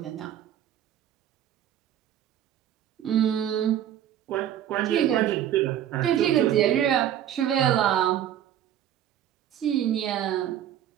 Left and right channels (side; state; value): left; quieter; 10.9 dB